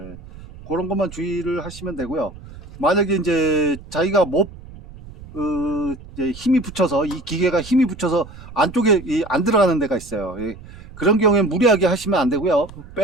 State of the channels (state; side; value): noise; right; rumble, 17 dB below the sound